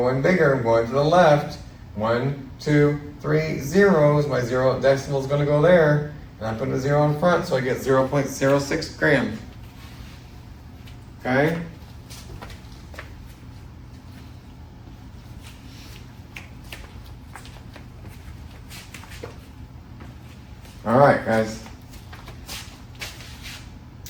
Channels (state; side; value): identical; both; correlation 1.00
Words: bigger. I'm going to the left. 1, 2, 3 zeros. My zero decimal is going to go there. And I put a 0 in front, so I get 0.06 grams. Okay? All right, guys.